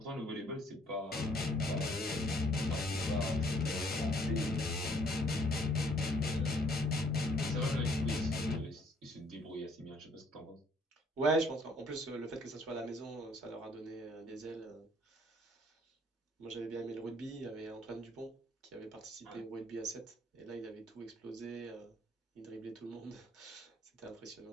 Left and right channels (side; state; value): both; normal; correlation 0.62